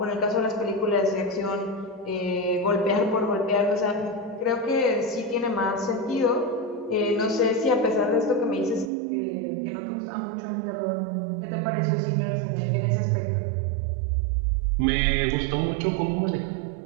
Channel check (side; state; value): left; drops out; at 8.9 s